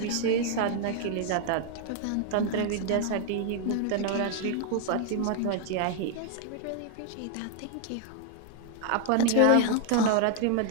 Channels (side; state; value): both; different; correlation 0.00